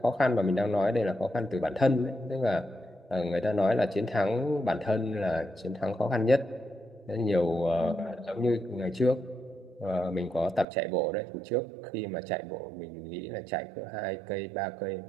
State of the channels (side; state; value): left; drops out; at 10.7 s